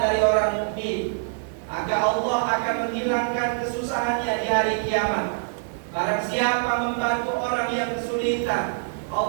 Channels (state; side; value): silent; left; digital silence